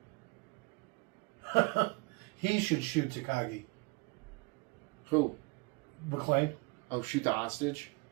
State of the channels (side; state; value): left; quieter; 28.0 dB